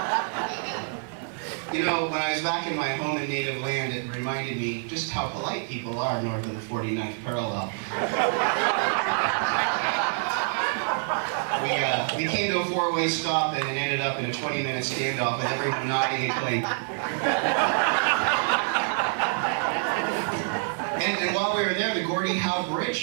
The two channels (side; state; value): left; silent; 57 dB below the other